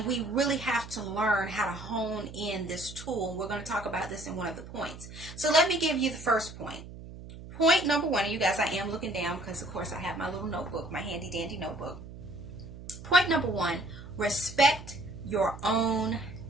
we really have to learn how to hone in this tool. We're going to talk about this in one of the points. So let me give you the first point. Point number one, and you guys, I am looking down because, of course, I have my little notebook, my handy dandy notebook. Point number one, respect your own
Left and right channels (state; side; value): noise; right; hum, 14 dB below the sound